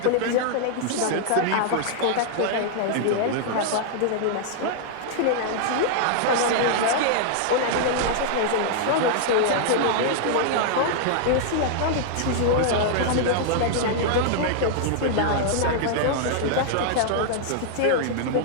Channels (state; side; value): different; both; correlation -0.01